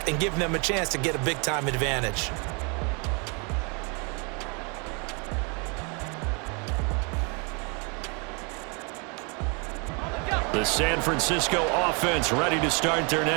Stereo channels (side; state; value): left; quieter; 33.4 dB